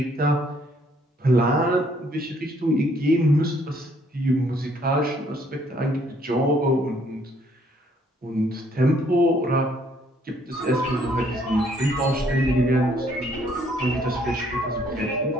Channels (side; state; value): both; normal; correlation 0.65